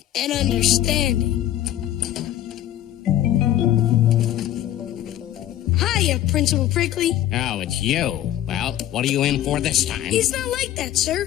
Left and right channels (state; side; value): quieter; right; 12.5 dB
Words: an understanding. Hiya, Principal Prickly. Oh, it's you. Well, what are you in for this time? He's not like that,